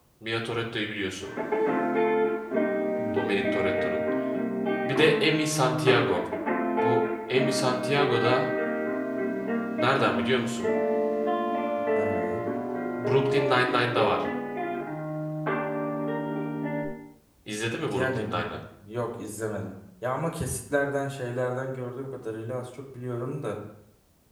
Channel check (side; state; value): both; identical; correlation 1.00